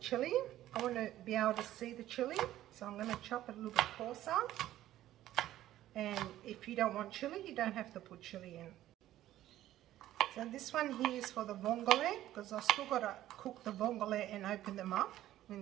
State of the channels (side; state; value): left; quieter; 13.7 dB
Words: I want to be able to see the chilli, so I'm going to chop it a little bit coarser. And if you don't want chilli, you don't have to put chilli in. So this one here is for the vongole, because I've still got to cook the vongole and open them up